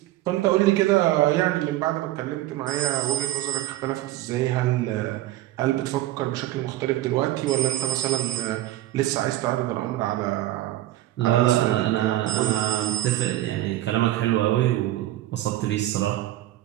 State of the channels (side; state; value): left; quieter; 15.1 dB